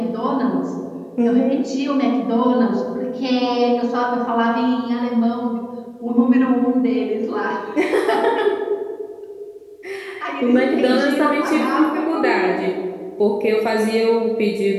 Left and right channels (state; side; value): identical; both; correlation 1.00